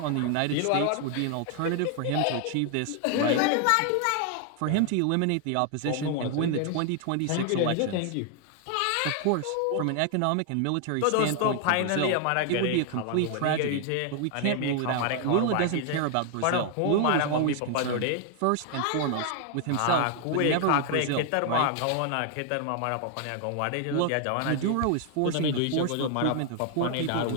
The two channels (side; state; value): both; different; correlation 0.00